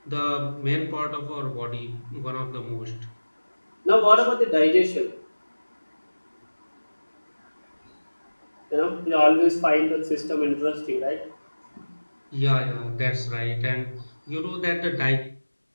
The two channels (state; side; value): inverted; both; correlation -1.00